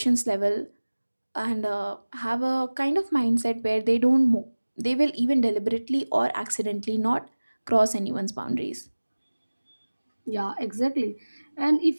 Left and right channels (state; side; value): inverted; both; correlation -1.00